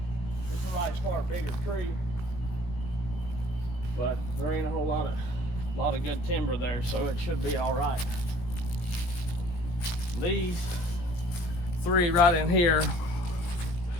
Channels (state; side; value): late; right; 17 ms